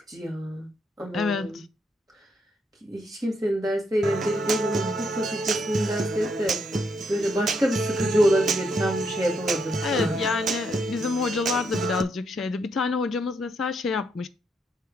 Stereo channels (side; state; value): both; normal; correlation 0.76